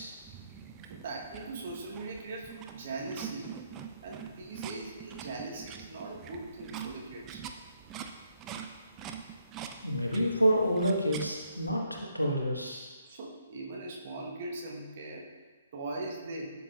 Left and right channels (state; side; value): inverted; both; correlation -0.74